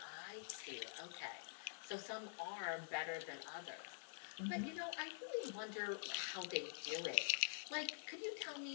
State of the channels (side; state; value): right; silent; digital silence